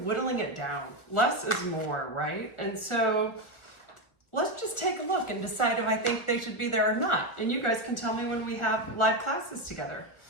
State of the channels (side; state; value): right; late; 1.2 ms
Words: whittling it down. Less is more, right? And so let's just take a look and decide if I think they should be there or not. And you guys can tell me when we have live classes together.